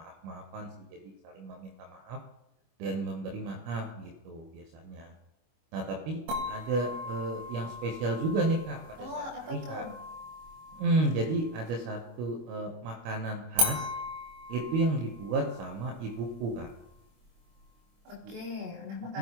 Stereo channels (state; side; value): late; left; 25 ms